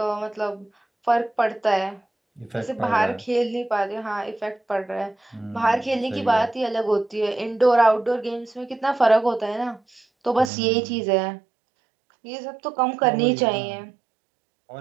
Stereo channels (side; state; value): left; drops out; at 10.5 s